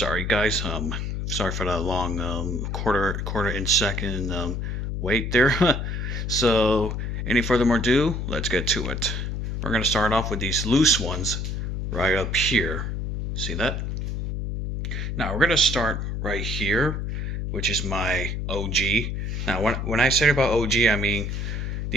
guys, sorry for that long quarter inch second wait there. So, any further ado, let's get to it. We're going to start off with these loose ones right up here. See that? Now, we're going to start right here, which is my OG. Now, when I say about OG, I mean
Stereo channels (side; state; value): left; noise; hum, 3 dB below the sound